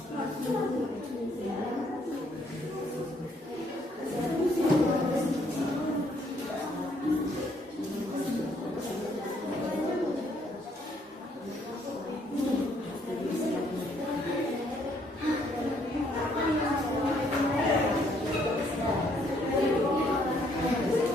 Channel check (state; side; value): normal; both; correlation 0.68